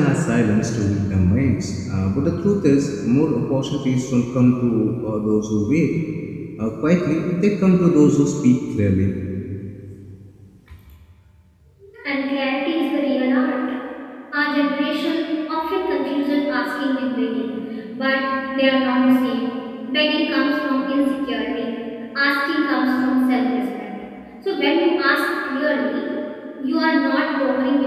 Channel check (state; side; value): identical; both; correlation 1.00